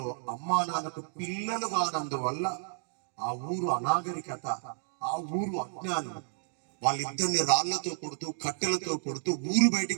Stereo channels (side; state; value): left; silent; digital silence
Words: అమ్మా నాన్నకు పిల్లలు కానందువల్ల ఆ ఊరు అనాగరికత, ఆ ఊరు అజ్ఞానం, వాళ్ళిద్దరిని రాళ్లతో కొడుతూ, కట్టెలతో కొడుతూ ఊరు